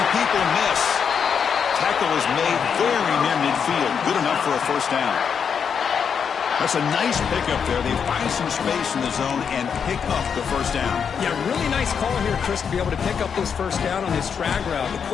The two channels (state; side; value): quieter; right; 6.9 dB